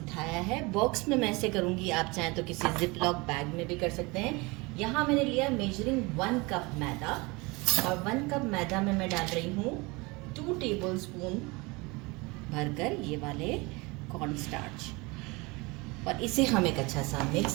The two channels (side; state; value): left; quieter; 25.5 dB